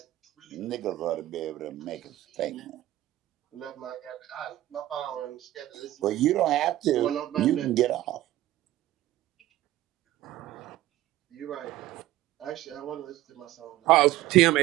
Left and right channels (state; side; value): quieter; left; 15.0 dB